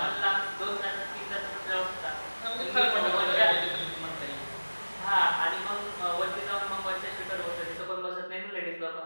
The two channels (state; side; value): inverted; both; correlation -1.00